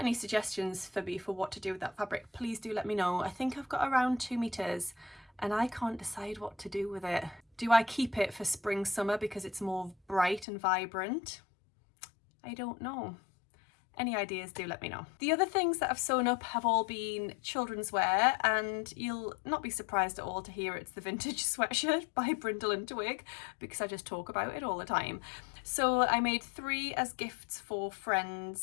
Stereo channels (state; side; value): drops out; right; at 10.5 s